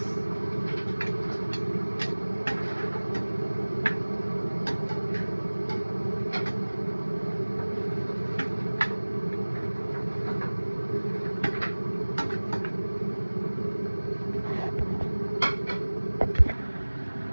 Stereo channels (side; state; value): both; inverted; correlation -1.00